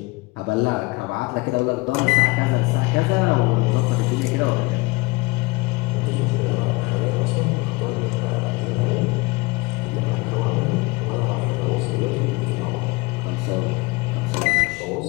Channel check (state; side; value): quieter; right; 24.4 dB